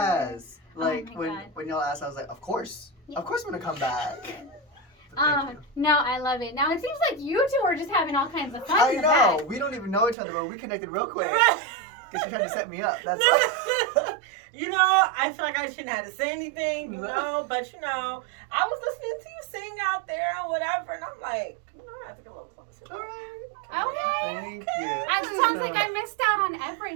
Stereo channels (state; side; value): drops out; left; at 10.2 s